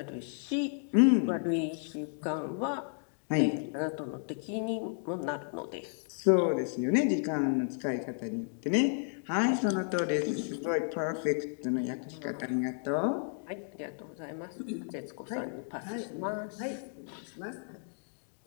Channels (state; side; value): silent; right; 56 dB below the other